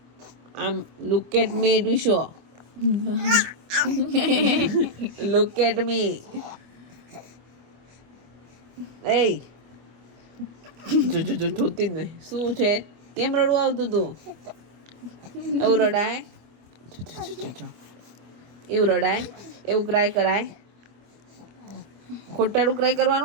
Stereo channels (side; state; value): left; late; 25 ms